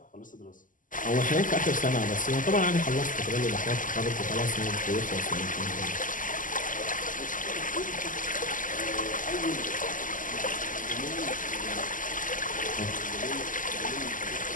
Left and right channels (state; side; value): late; right; 0.38 ms